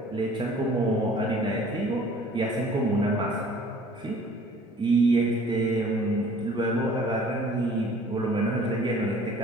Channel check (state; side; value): normal; both; correlation 0.51